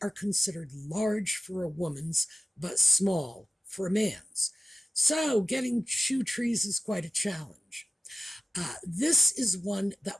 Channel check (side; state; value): both; normal; correlation 0.96